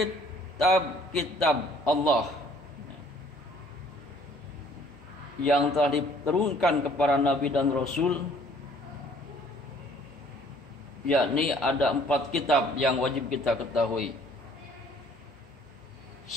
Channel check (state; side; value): normal; both; correlation 0.58